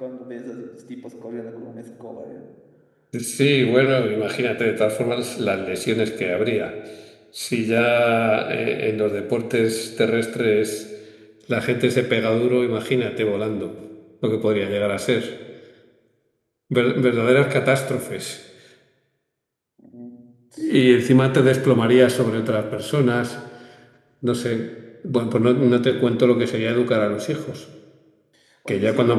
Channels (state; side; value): identical; both; correlation 1.00